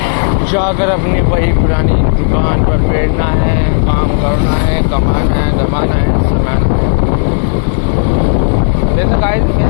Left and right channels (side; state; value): right; silent; digital silence